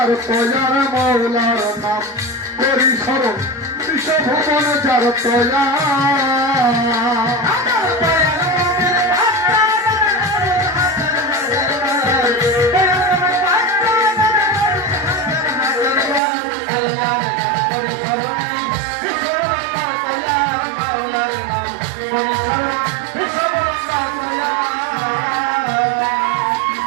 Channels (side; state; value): left; drops out; at 16.2 s